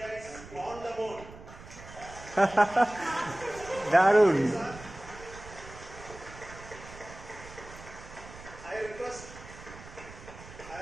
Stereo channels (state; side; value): noise; right; rumble, 16 dB below the sound